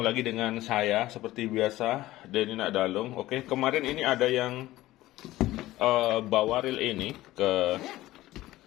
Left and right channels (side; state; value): right; quieter; 16.5 dB